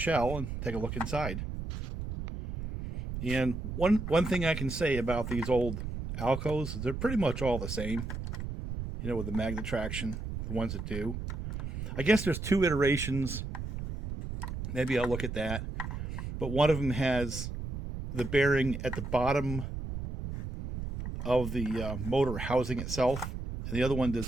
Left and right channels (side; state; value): right; noise; rumble, 6 dB below the sound